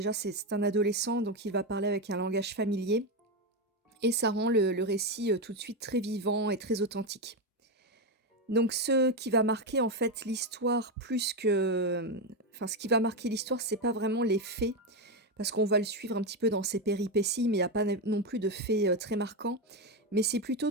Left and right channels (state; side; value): normal; both; correlation 0.10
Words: c'est un adolescent, donc il va parler avec un langage familier. Et ça rend le récit tout de suite très vivant et très authentique. Donc ce qui va marquer en fait l'histoire plus que, enfin ce qui va marquer l'histoire, c'est pas vraiment les faits, parce qu'on va le suivre un petit peu dans ses péripéties, mais il y a pas non plus de faits, très marquants. Mais c'est